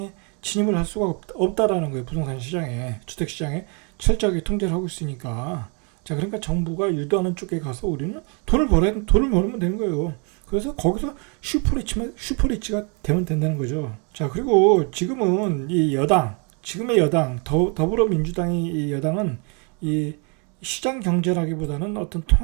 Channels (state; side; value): quieter; left; 35.9 dB